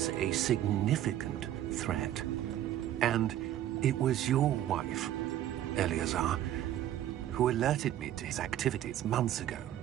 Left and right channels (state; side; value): quieter; left; 12.2 dB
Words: a significant threat. And it was your wife, Eleazar, who alerted me to his activities months ago.